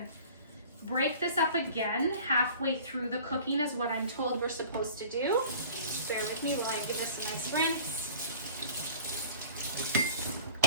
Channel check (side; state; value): both; inverted; correlation -0.46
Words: break this up again halfway through the cooking is what I'm told we're supposed to do. Bear with me while I give this a nice rinse.